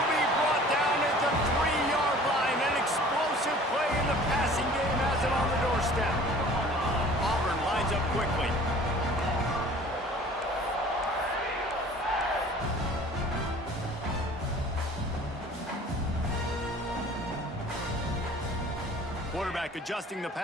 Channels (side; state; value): both; normal; correlation 0.48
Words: be brought down at the 3-yard line. An explosive play in the passing game has it on the doorstep. Auburn lines up quickly. Quarterback adjusting the